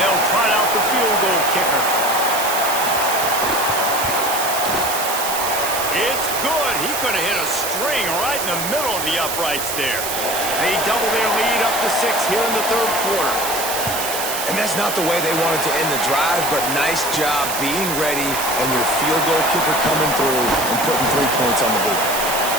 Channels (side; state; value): right; noise; hiss, 4 dB below the sound